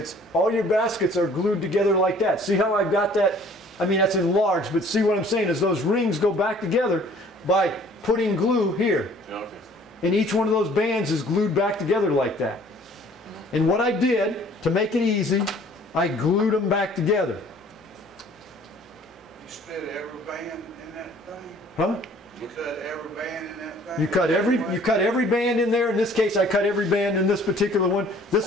are glued together like that. See how I've got that? I mean, that's enlarged, but see what I'm saying is those rings go back together by putting glue here. Yeah, okay. And each one of those bands is glued back together like that. And what I did, to make it easy, I glued them back together. You split every band in that thing? Huh? You cut every band in that thing? You cut every band in there. In this case, I cut every band in this particular one.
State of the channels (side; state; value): both; normal; correlation 0.54